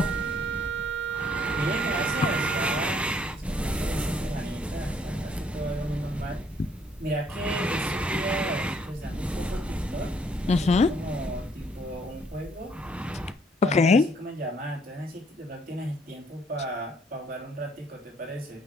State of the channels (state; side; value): normal; both; correlation 0.65